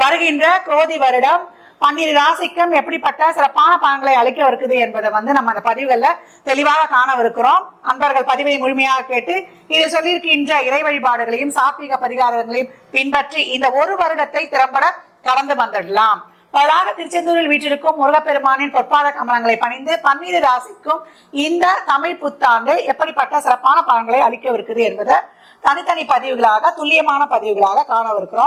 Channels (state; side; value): identical; both; correlation 1.00